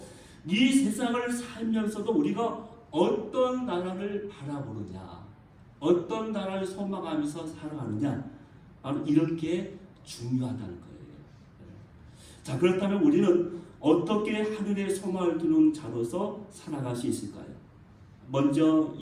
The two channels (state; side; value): identical; both; correlation 1.00